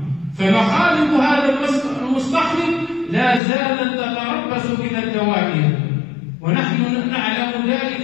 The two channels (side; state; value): right; drops out; at 3.4 s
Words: فمخالب هذا المستخرج لا زالت تتربص بنا الدوائر، ونحن نعلم ذلك